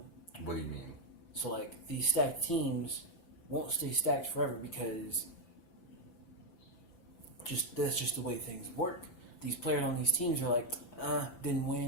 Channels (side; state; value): right; late; 5.9 ms